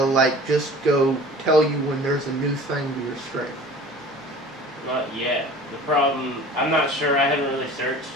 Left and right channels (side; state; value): both; normal; correlation 0.43